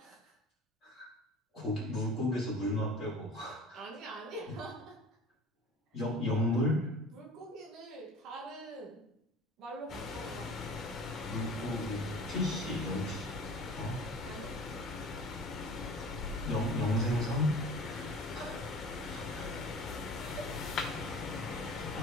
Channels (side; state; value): both; normal; correlation 0.42